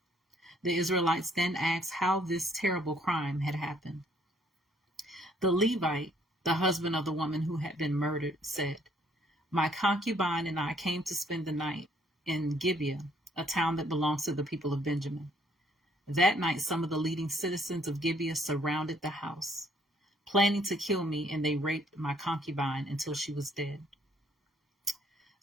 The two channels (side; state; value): both; normal; correlation 0.64